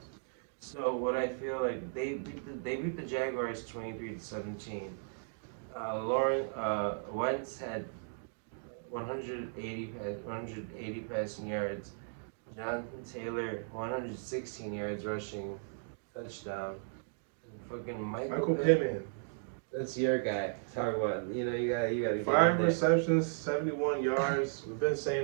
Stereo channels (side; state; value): left; silent; digital silence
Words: So what I feel like they beat the Jaguars 23-17. Wentz had 180 passing yards. Jonathan Taylor 116 yards rushing, touchdown. And fucking Michael Pittman. That's your guy. Talk about you gotta 5 receptions, 71 yards. We've been